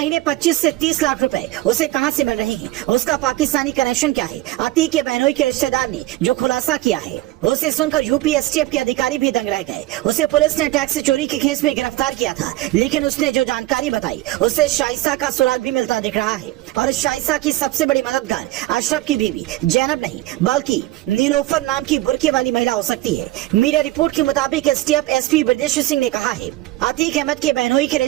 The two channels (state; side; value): quieter; left; 16.7 dB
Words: 25 से 30 लाख रुपए उसे कहां से मिल रहे हैं, उसका पाकिस्तानी कनेक्शन क्या है। अतीक के बहनोई के रिश्तेदार ने जो खुलासा किया है उसे सुनकर यूपी एसटीएफ के अधिकारी भी दंग रह गए। उसे पुलिस ने टैक्स चोरी के केस में गिरफ्तार किया था, लेकिन उसने जो जानकारी बताई उससे शाइसा का सुराग भी मिलता दिख रहा है। और शाइसा की सबसे बड़ी मददगार अशरफ की बीवी जैनब नहीं बल्कि नीलोफर नाम की बुर्के वाली महिला हो सकती है। मीडिया रिपोर्ट के मुताबिक एसटीएफ एसपी ब्रजेश सिंह ने कहा है अतीक अहमद के बहनोई के